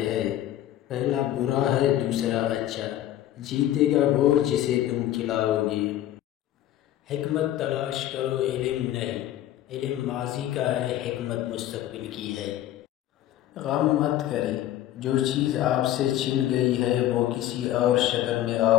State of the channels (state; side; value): quieter; right; 12.9 dB